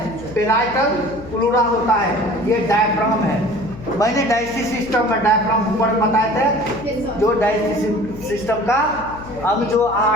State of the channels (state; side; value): noise; left; hum, 15 dB below the sound